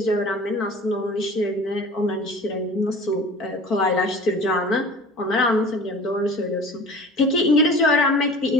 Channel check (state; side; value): normal; both; correlation 0.41